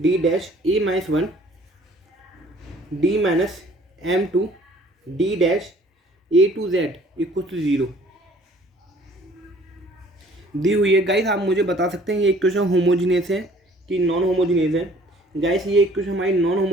dash a minus 1 d minus m two d dash a two z equal to 0 दी हुई है। गाइस आप मुझे बता सकते हैं ये इक्वेशन होमोजीनियस है कि नॉन होमोजीनियस है। गाइस ये इक्वेशन हमारी नॉन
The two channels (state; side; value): normal; both; correlation 0.55